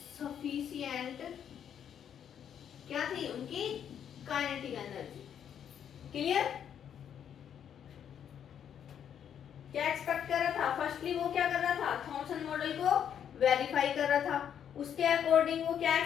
sufficient क्या थी उनकी काइनेटिक एनर्जी। क्लियर? क्या एक्सपेक्ट कर रहा था? फर्स्टली वो क्या कर रहा था? थॉमसन मॉडल को वेरीफाई कर रहा था। उसके अकॉर्डिंग वो क्या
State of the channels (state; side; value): quieter; right; 8.9 dB